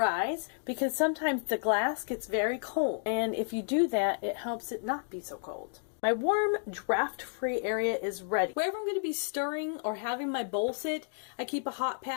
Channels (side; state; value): right; silent; digital silence